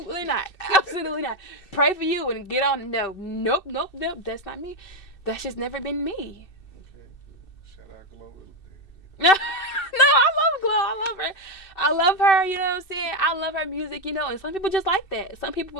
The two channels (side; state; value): right; late; 2.6 ms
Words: not. Absolutely not. Pray for you and get on. No. Nope. That's not me. That's just never been me. Okay. Shout out Glow. No, I love Glow. I love her, you know what I'm saying? I love her music, and some people just like that. Some